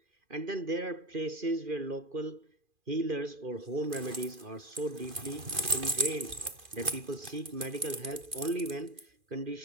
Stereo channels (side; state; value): left; late; 2.4 ms